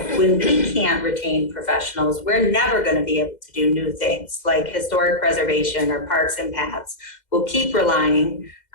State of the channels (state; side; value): late; right; 2.1 ms